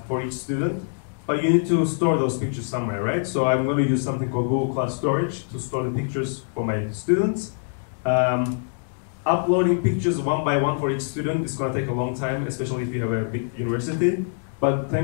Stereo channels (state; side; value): silent; right; digital silence